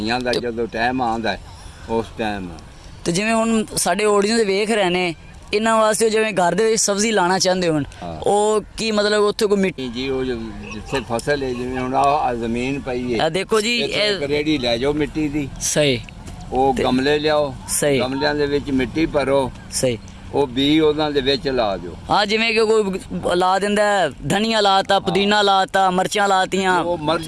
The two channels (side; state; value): both; identical; correlation 1.00